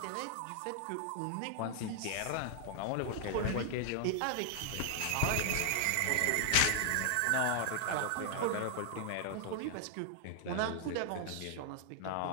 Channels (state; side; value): different; both; correlation 0.00